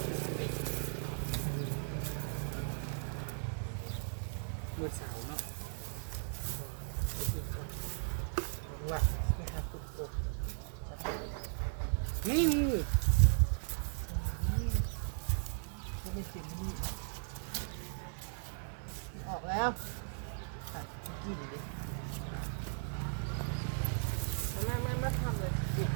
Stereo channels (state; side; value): silent; left; digital silence